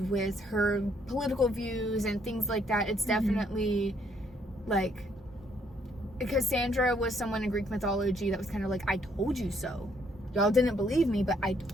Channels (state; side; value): normal; both; correlation 0.69